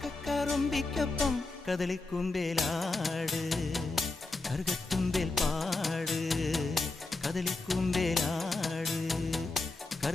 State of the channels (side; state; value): right; quieter; 3.3 dB